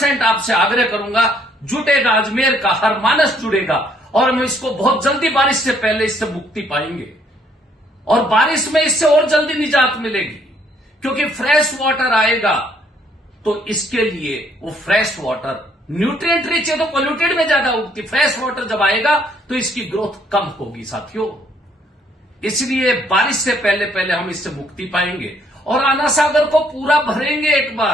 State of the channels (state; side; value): normal; both; correlation 0.66